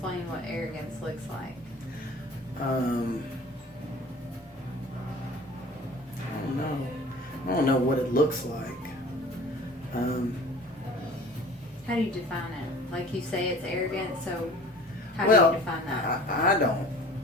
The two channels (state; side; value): normal; both; correlation 0.44